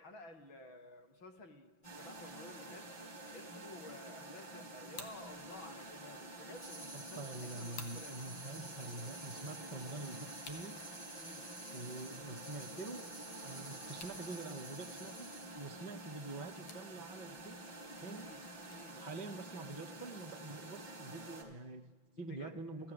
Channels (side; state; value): right; late; 5.9 ms